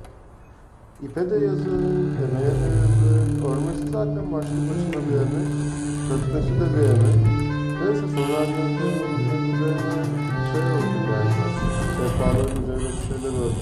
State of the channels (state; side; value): identical; both; correlation 1.00